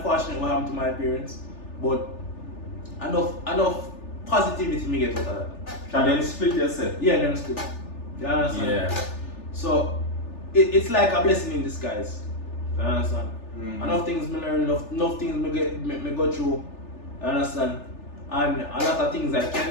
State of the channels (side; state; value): right; late; 3.4 ms